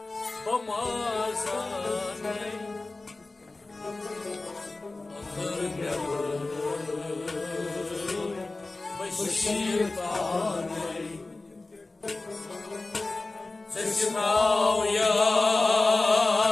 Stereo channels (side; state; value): right; quieter; 3.2 dB